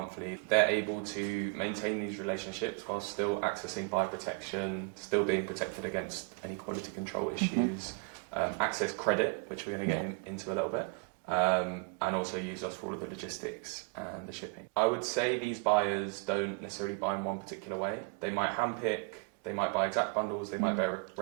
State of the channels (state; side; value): quieter; left; 35.4 dB